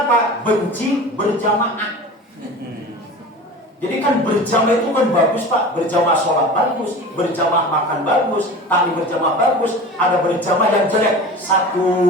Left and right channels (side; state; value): both; normal; correlation 0.35